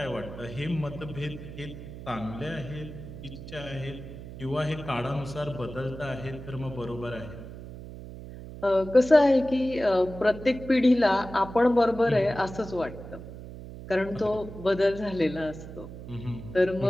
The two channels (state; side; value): noise; right; hum, 12 dB below the sound